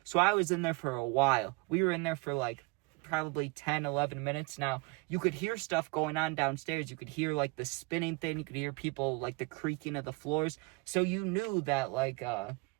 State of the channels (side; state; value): left; quieter; 27.4 dB